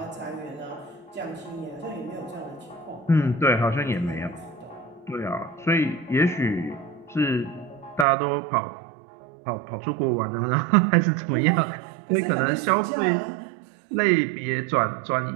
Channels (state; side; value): drops out; left; at 8.1 s